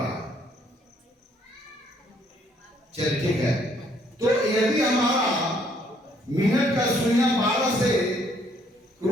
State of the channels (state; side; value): normal; both; correlation 0.66